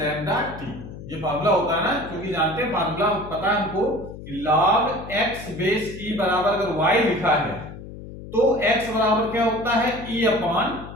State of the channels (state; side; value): noise; left; hum, 13 dB below the sound